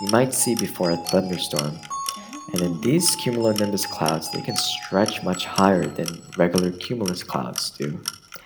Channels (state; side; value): identical; both; correlation 1.00